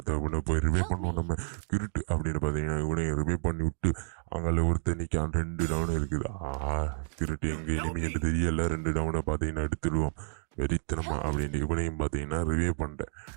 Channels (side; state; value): left; silent; digital silence